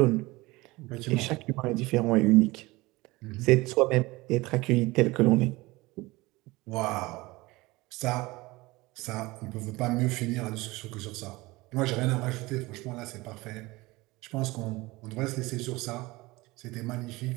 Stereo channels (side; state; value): left; quieter; 21.4 dB